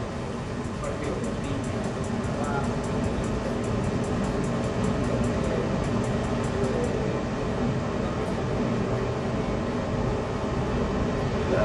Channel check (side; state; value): both; identical; correlation 1.00